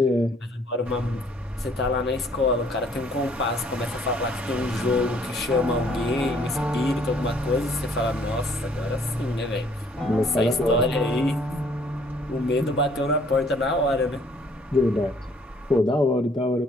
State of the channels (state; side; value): normal; both; correlation 0.61